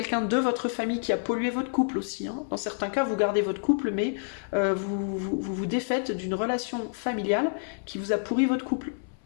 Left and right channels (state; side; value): silent; right; 58 dB below the other